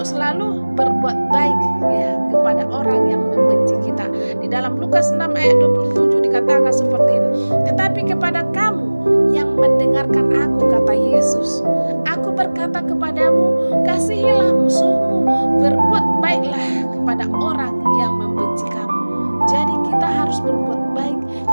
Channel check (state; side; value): inverted; both; correlation -1.00